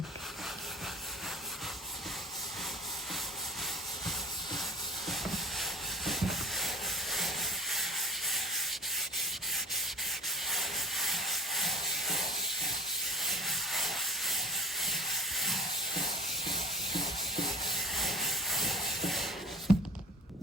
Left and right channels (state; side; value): normal; both; correlation 0.43